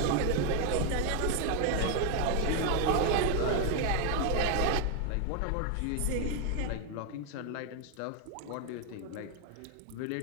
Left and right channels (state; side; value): different; both; correlation 0.01